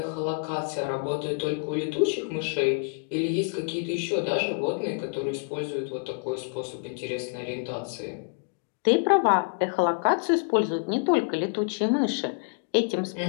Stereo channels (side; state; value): right; silent; digital silence